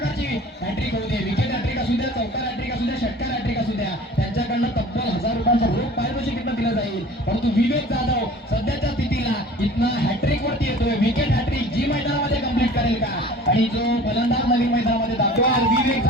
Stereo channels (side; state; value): both; normal; correlation 0.44